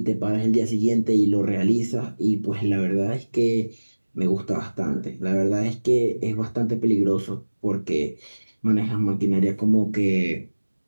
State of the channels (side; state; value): both; inverted; correlation -1.00